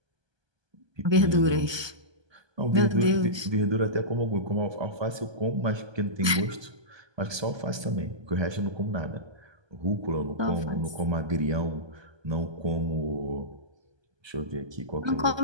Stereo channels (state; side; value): late; left; 1.2 ms